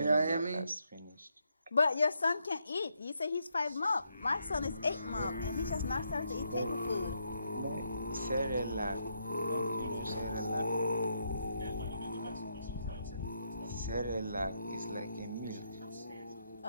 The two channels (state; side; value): inverted; both; correlation -0.78